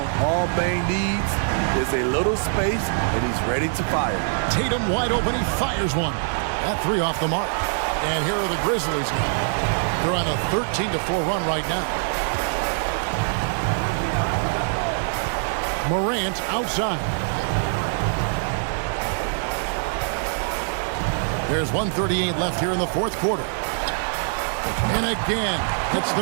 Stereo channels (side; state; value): left; silent; digital silence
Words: All Bane needs is a little space, and he's ready to fire. Tatum wide open, he fires one. That three off the mark. And here are the Grizzlies now. They're on a 13-4 run right now. Morant outside. There's 1:38 left here in the fourth quarter. And again, it's